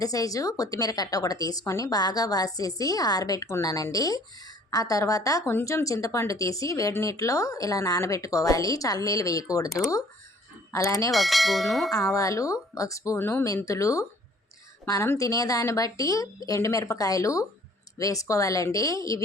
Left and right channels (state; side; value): normal; both; correlation 0.56